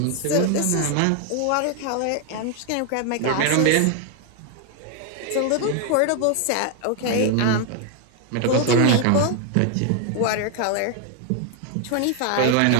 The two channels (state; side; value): different; both; correlation 0.01